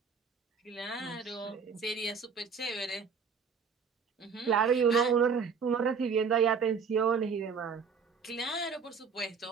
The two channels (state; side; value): quieter; left; 5.8 dB